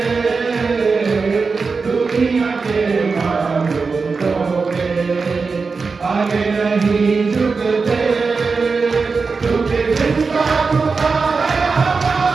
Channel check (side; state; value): left; quieter; 4.6 dB